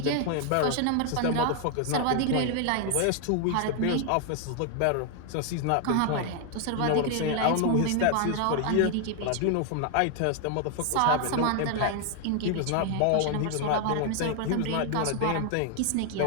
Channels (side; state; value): both; different; correlation 0.00